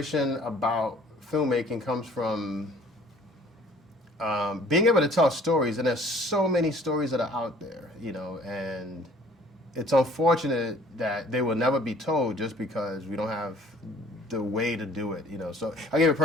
about filmmaking comes from being able to tell stories, and there's so many stories that are out there, and it's unfortunate that they will never be told just because we don't have the way to do it, So I'll give you a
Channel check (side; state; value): both; normal; correlation 0.54